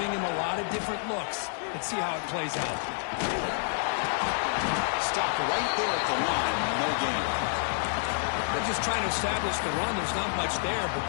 him a lot of different looks. Let's see how it plays out. Stop right there at the line. No gain. They're just trying to establish the run. There's not much there, but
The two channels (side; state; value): right; silent; digital silence